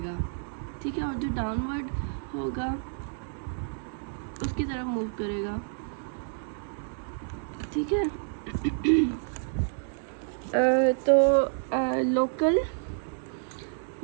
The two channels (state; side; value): silent; left; 58 dB below the other